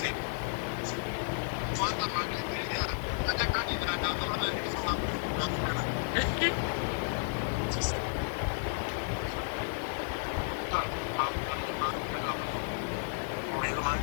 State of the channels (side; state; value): right; silent; 56 dB below the other